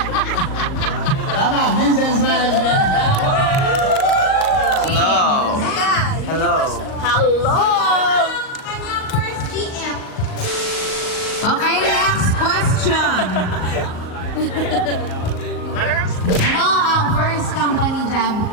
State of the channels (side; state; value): right; late; 38 ms